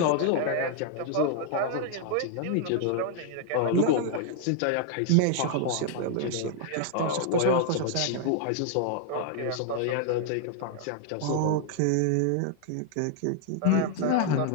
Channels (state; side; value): different; both; correlation 0.00